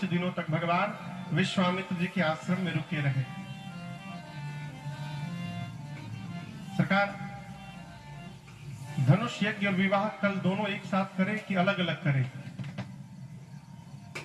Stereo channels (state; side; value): identical; both; correlation 1.00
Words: दिनों तक भगवान विश्वामित्र जी के आश्रम में रुके रहे। सरकार, धनुष यज्ञ और विवाह कल दोनों एक साथ करें कि अलग अलग करें,